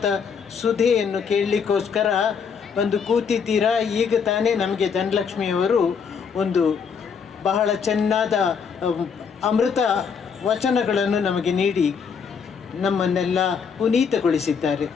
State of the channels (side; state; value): right; quieter; 6.3 dB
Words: ಸುಧೆಯನ್ನು ಕೇಳಲಿಕ್ಕೋಸ್ಕರ ಒಂದು ಕೂತಿದ್ದೀರಾ. ಈಗ ತಾನೇ ನಮಗೆ ಧನಲಕ್ಷ್ಮಿಯವರು ಒಂದು ಬಹಳ ಚೆನ್ನಾದ ಅಮೃತ ವಚನಗಳನ್ನು ನಮಗೆ ನೀಡಿ ನಮ್ಮನ್ನೆಲ್ಲ ಪುನೀತಗೊಳಿಸಿದ್ದಾರೆ.